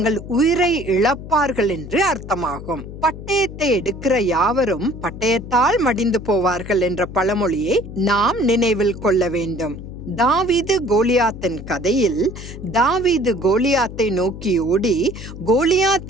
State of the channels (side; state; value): left; noise; hum, 12 dB below the sound